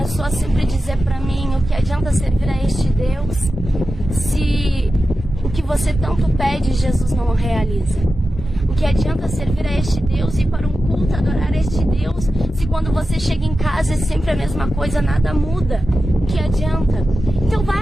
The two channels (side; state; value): both; normal; correlation 0.92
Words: a sempre dizer para mim: o que adianta servir a este Deus se o que você tanto pede Jesus não realiza? O que adianta servir a este Deus e ir para um culto, adorar este Deus, se quando você chega em casa é sempre a mesma coisa, nada muda? O que adianta? Então